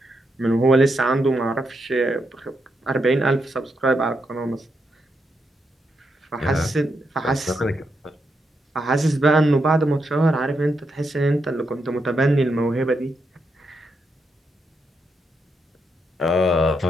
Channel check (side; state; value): both; normal; correlation 0.82